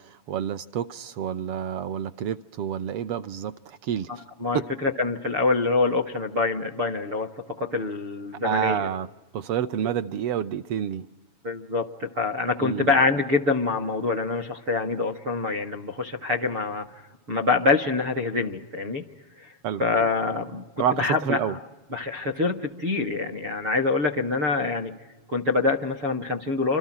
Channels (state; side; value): late; left; 7.2 ms